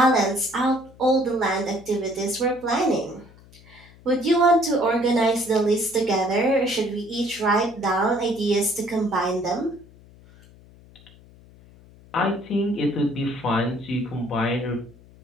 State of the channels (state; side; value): noise; left; hum, 24 dB below the sound